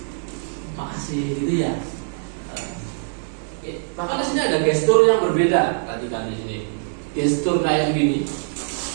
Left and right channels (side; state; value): left; silent; 59 dB below the other